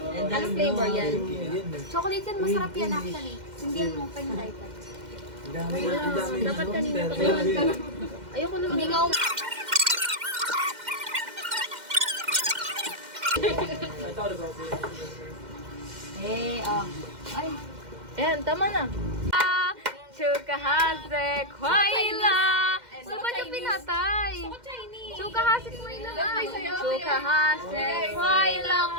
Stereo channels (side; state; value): left; late; 2.1 ms